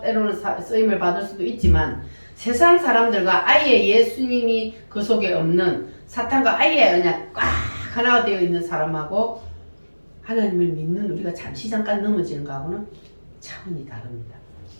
쓰임을 받을 수도 있지만, 세상 사람들과 아예 예수님이 그 속에 없는 사탄과 아예 그냥 꽉 하나가 되어 있는 사람하고 하나님을 믿는 우리가 잠시 잠깐 넘어지는 거하고는 차원이 다릅니다.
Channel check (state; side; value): inverted; both; correlation -1.00